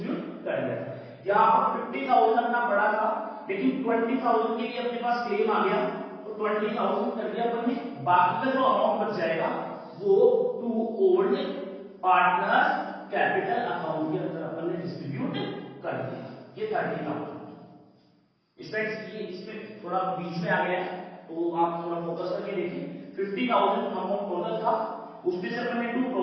कर दिया था। यहां पर 50,000 अपना पड़ा था, लेकिन 20,000 के लिए अपने पास क्लेम आ गया, तो 20,000 कर दिया अपन ने, बाकी का जो अमाउंट बच जाएगा वो to old partner capital account के अंदर अपन ने डिस्ट्रीब्यूट कर दिया। ये 30,000 इसमें थोड़ा बीच में आ गया है, तो आप थोड़ा फोकस करके देखिए। 50,000 अमाउंट टोटल था, उसमें से अपन ने टू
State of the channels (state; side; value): identical; both; correlation 1.00